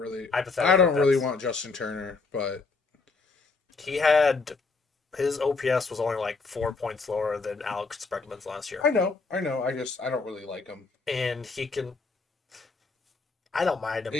Hypothetically, want Justin Turner, but he had his OPS was only like 4 points lower than Alex Bregman's last year. I know. I don't really like him, and he can. I don't mind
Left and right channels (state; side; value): quieter; right; 4.1 dB